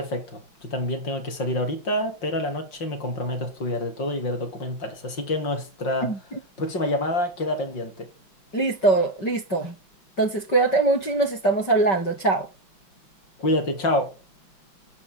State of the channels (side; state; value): right; late; 5.2 ms